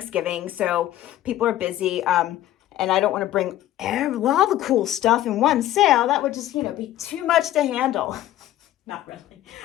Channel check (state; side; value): quieter; right; 13.5 dB